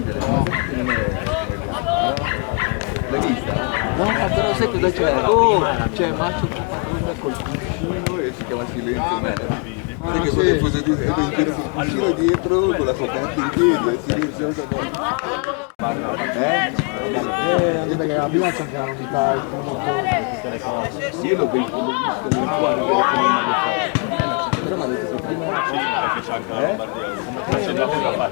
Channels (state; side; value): quieter; right; 36.6 dB